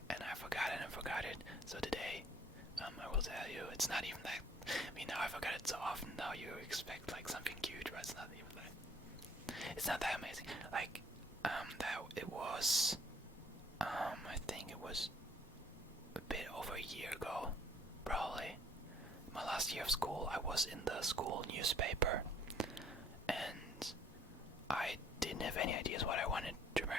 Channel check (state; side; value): normal; both; correlation 0.59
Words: and I forgot it and forgot it. So today, I will tell you. It's not even that. I mean, now I forgot it so often. Now you expect like something huge, but it's not even that. It's not that amazing. Like, that it was. I think it was a bit over a year ago, probably. My last year of school, I was in the school newspaper, and I didn't have any ideas what I wanted to